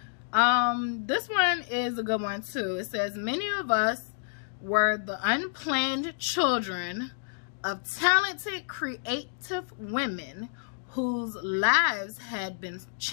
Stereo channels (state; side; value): silent; right; digital silence